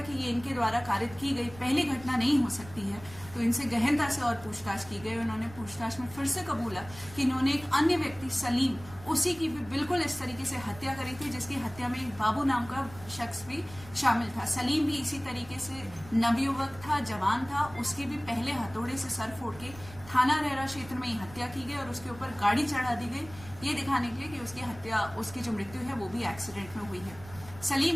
कि ये इनके द्वारा कारित की गई पहली घटना नहीं हो सकती है। तो इनसे गहनता से और पूछताछ की गई। उन्होंने पूछताछ में फिर से कबूला कि इन्होंने एक अन्य व्यक्ति सलीम, उसी की भी बिल्कुल इस तरीके से हत्या करी थी, जिसकी हत्या में एक बाबू नाम का शख्स भी शामिल था। सलीम भी इसी तरीके से नवयुवक था, जवान था, उसकी भी पहले हथौड़े से सर फोड़ के थाना रहरा क्षेत्र में ही हत्या की गई और उसके ऊपर गाड़ी चढ़ा दी गई, ये दिखाने के लिए कि उसकी जो मृत्यु है वो भी एक्सीडेंट में हुई है।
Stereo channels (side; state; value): right; noise; rumble, 18 dB below the sound